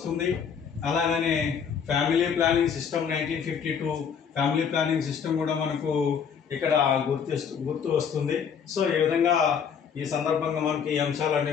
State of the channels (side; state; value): right; quieter; 7.1 dB